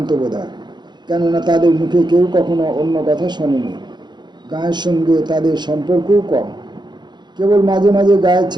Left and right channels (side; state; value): left; late; 0.21 ms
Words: বোধহয়, কেননা তাদের মুখে কেউ কখনো অন্য কথা শোনেনি। গায়ের সঙ্গে তাদের সম্পর্কও কম। কেবল মাঝে মাঝে গায়ের